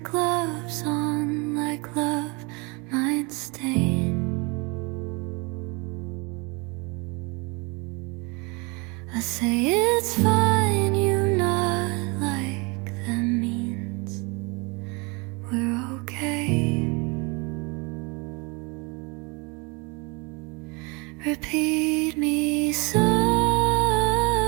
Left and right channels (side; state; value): left; quieter; 29.3 dB